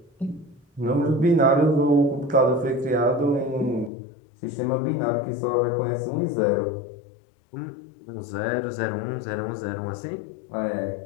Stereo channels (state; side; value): drops out; right; at 3.9 s